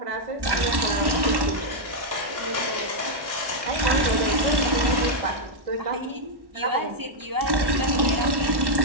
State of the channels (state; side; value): late; left; 1.1 ms